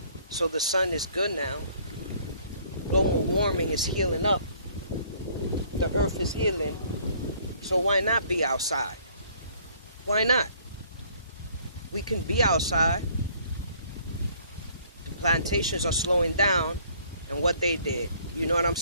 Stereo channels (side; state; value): both; inverted; correlation -0.60